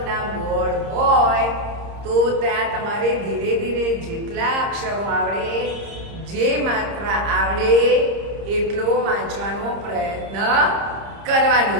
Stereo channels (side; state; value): left; late; 30 ms